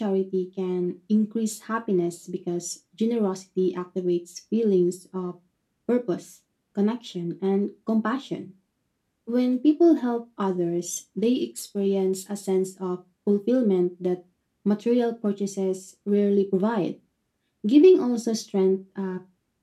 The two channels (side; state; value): both; identical; correlation 1.00